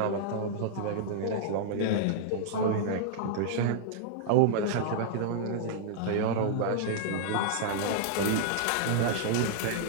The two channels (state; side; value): different; both; correlation -0.02